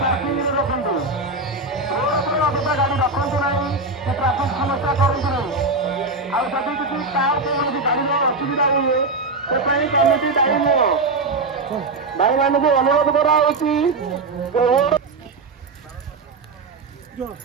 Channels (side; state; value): left; quieter; 3.5 dB